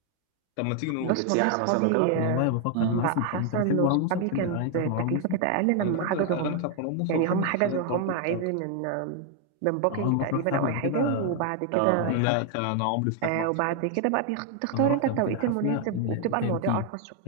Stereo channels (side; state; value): both; different; correlation 0.00